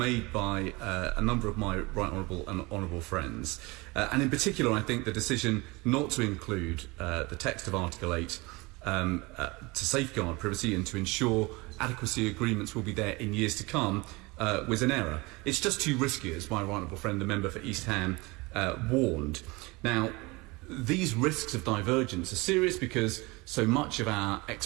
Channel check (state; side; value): quieter; left; 24.5 dB